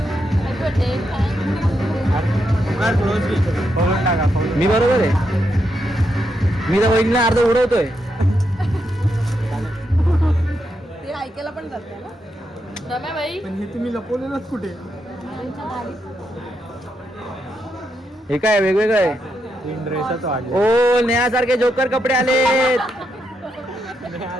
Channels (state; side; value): normal; both; correlation 0.82